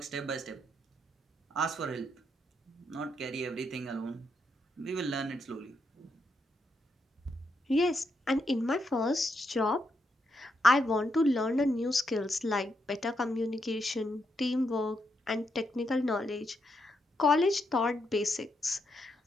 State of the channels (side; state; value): both; normal; correlation 0.80